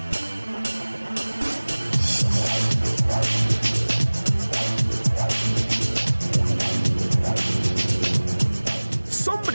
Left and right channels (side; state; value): both; inverted; correlation -1.00